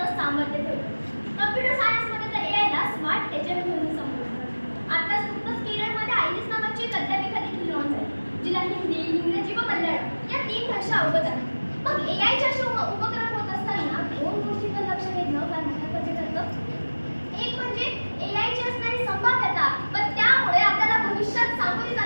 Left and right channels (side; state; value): both; inverted; correlation -1.00